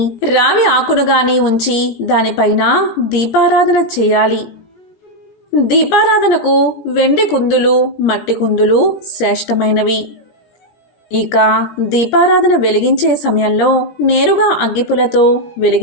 రావి ఆకును కానీ ఉంచి దానిపైన దీపారాధన చేయాలి. దీపారాధనకు వెండి కుందులు, మట్టి కుందులు శ్రేష్టమైనవి. ఇక దీపారాధన వెలిగించే సమయంలో నేరుగా అగ్గిపులతో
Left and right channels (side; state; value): right; late; 17 ms